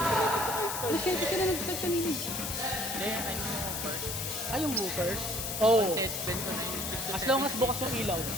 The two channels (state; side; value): noise; left; hiss, 4 dB below the sound